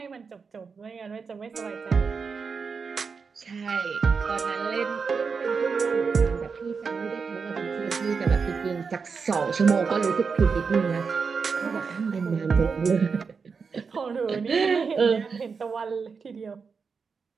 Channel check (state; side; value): quieter; left; 5.4 dB